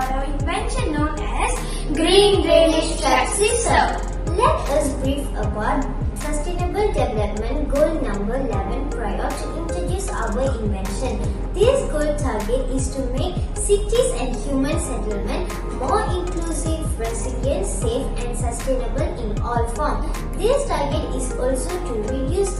our invention known as Green Drainage Trap System. Let us brief about Sustainable Development Goal number 11 prior to introduce our invention. This goal target is to make cities and human settlement more inclusive, resilient, safe and sustainable in all forms. This target is also to reduce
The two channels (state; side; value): identical; both; correlation 1.00